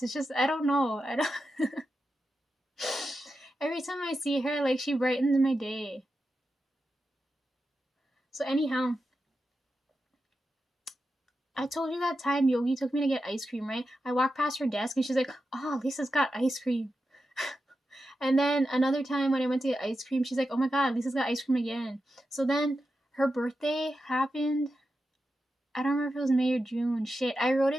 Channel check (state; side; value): normal; both; correlation 0.90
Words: It's just, I don't know. I don't... Every time I see her, like, she brightens my day. So anyhow, I told you that time Yogi took me to get ice cream, right? I walked past her desk and she's like, oh, Lisa's got ice cream. And then another time when I went to get ice cream, she's like, oh my god, Lisa's got ice cream again. So then her birthday happened. I don't remember if it was May or June. Shit, I wrote